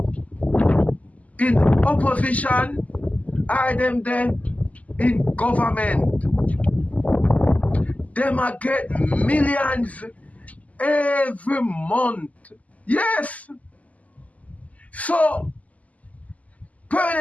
in opposition or them there in government. Them are get millions every month. Yes. So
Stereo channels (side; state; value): right; late; 0.073 ms